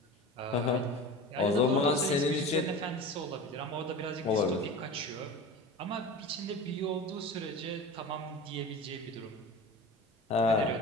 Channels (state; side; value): normal; both; correlation 0.33